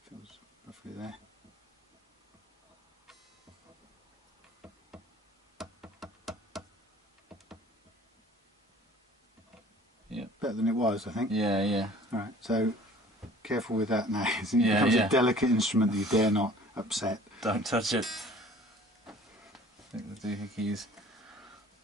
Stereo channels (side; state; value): both; normal; correlation 0.50